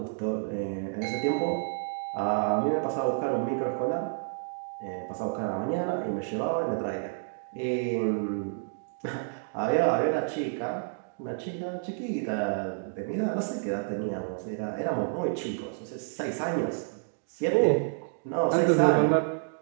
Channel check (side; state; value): left; silent; digital silence